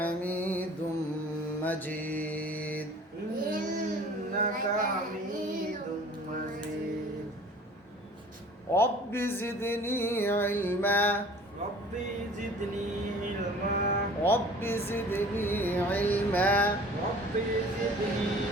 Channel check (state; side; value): normal; both; correlation 0.47